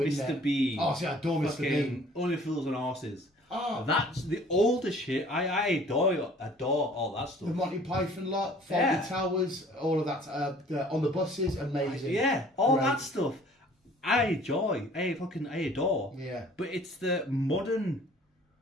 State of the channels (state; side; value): normal; both; correlation 0.53